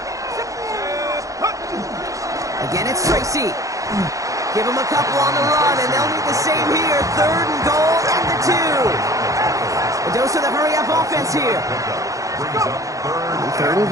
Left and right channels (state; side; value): late; left; 0.16 ms